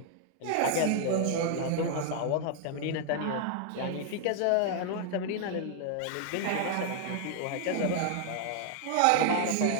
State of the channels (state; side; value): different; both; correlation 0.00